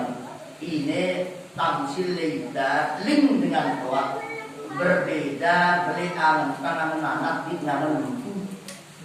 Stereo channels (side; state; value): both; identical; correlation 1.00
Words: ini tamsil leda link dengan tua berbeda beriangan tangan anak di tangan lembu